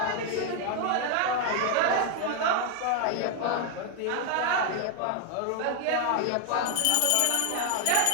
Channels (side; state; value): both; different; correlation 0.00